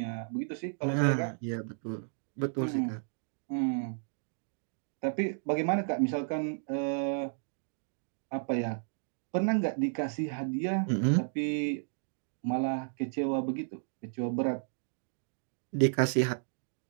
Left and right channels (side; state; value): left; silent; digital silence